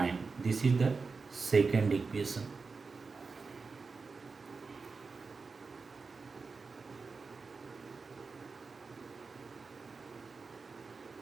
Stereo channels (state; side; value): quieter; left; 4.5 dB